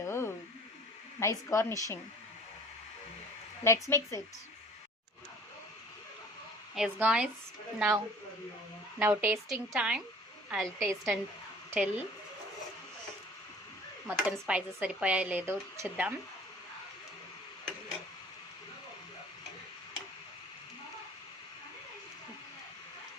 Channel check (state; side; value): normal; both; correlation 0.49